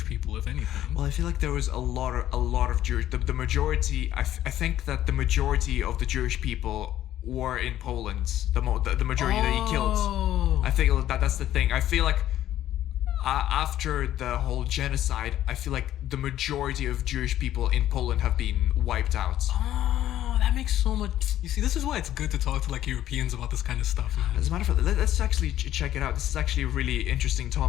people, if anything. Well, I feel like there was a lot of Jewish. The majority. I think that the majority of the Jewish people were in Poland. The majority that he killed. I think that's the thing. I feel like after the whole genocide, I feel like the majority of Jewish people in Poland have been wiped out. Oh, that makes so much. You see, this is why it's good to talk to like Europeans about this kind of stuff, man. As a matter of fact, let's actually check it out. This is actually a really interesting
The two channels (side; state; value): right; quieter; 12.6 dB